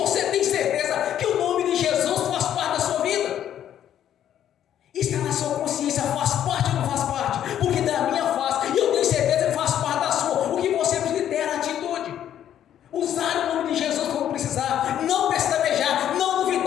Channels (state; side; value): quieter; right; 10.6 dB